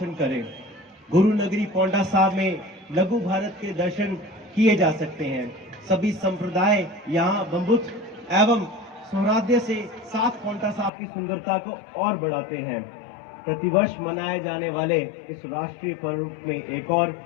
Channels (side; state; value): right; drops out; at 10.9 s